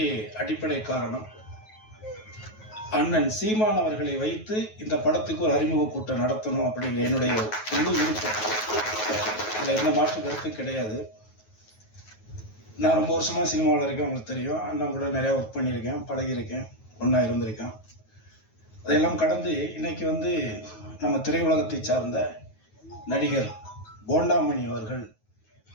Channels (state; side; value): late; right; 9.3 ms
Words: அடிப்படை காரணம், அண்ணன் சீமான் அவர்களை வைத்து இந்த படத்துக்கு ஒரு அறிமுக கூட்டம் நடத்தணும் அப்படிங்கிற என்னுடைய முழு விருப்பம். அதில் எந்த மாற்று கருத்து கிடையாது. நான் ரொம்ப வருஷமாக சினிமாவில் இருக்கேன், உங்களுக்கு தெரியும். அண்ணன் கூட நிறையா ஒர்க் பண்ணியிருக்கேன், பழகியிருக்கேன், ஒன்றா இருந்திருக்கேன். அதையெல்லாம் கடந்து இன்னைக்கு நம்ம திரையுலகத்தை சார்ந்த நடிகர் போண்டாமணி அவர்கள்